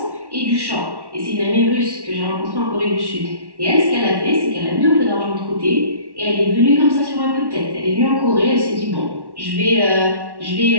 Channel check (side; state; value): left; late; 1.1 ms